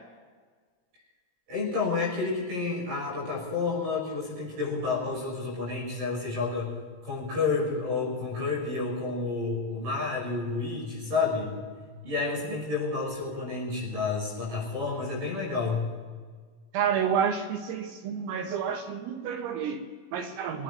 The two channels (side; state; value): left; late; 17 ms